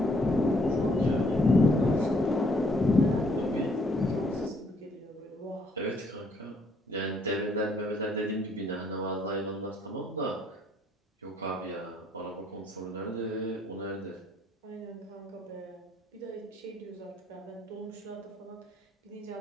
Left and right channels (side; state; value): both; normal; correlation 0.66